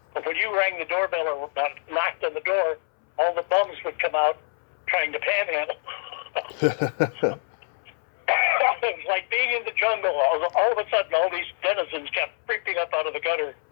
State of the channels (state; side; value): silent; right; 61 dB below the other